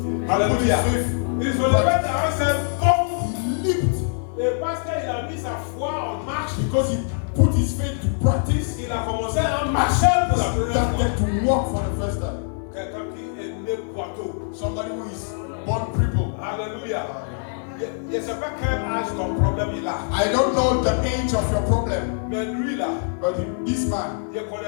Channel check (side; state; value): right; silent; digital silence